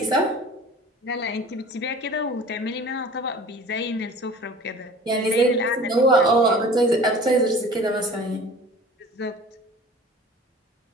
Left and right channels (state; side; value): normal; both; correlation 0.43